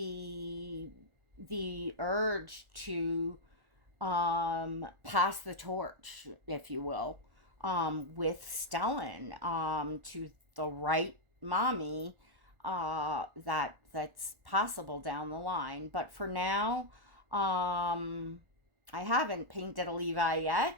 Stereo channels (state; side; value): late; left; 1.4 ms